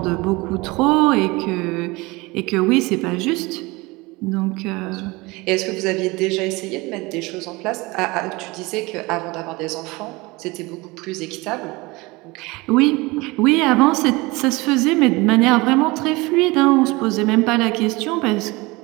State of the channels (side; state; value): left; quieter; 23.4 dB